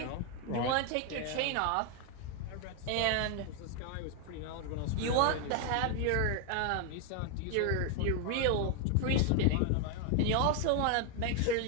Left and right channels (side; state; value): both; different; correlation 0.00